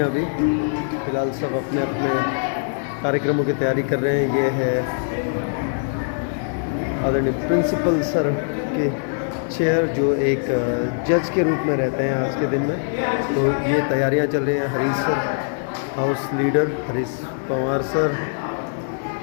अभी फ़िलहाल। सब अपने अपने कार्यक्रमों की तैयारी कर रहे हैं। ये है आदरणीय प्रिंसिपल सर के चेयर, जो एक जज के रूप में रहते हैं आज के दिन में। तो ये तैयारियां चल रही हैं। Harish sir, house leader Harish Pawar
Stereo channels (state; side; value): silent; right; digital silence